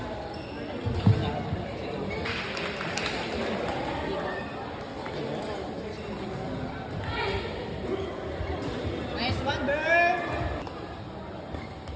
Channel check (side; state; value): both; identical; correlation 1.00